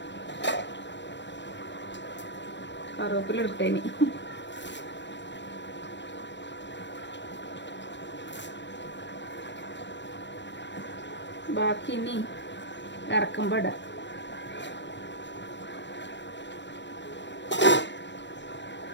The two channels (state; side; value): late; right; 0.52 ms